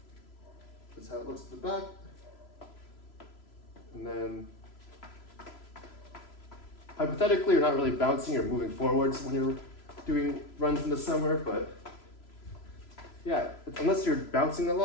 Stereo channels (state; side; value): late; right; 3.0 ms